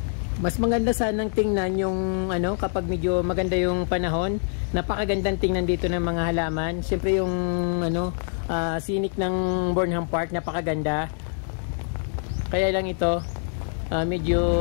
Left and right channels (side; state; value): right; silent; digital silence